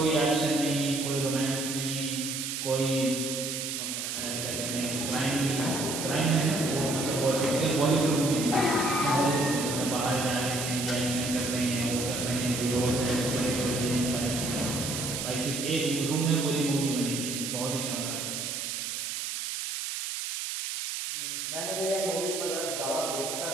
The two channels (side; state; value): right; noise; hiss, 4 dB below the sound